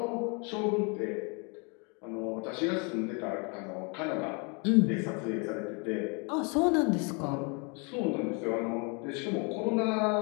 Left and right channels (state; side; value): quieter; right; 33.8 dB